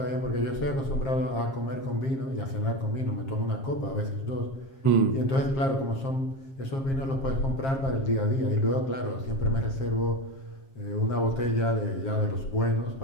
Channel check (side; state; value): right; late; 7.5 ms